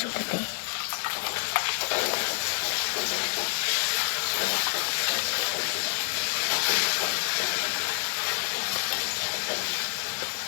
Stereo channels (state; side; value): silent; right; digital silence